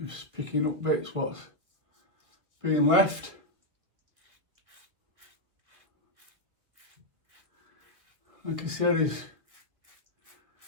Just picking up bits what's being left. Like I said, is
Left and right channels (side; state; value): left; late; 1.4 ms